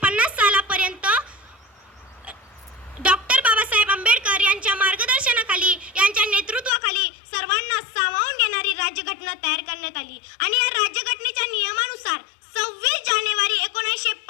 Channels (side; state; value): right; drops out; at 6.7 s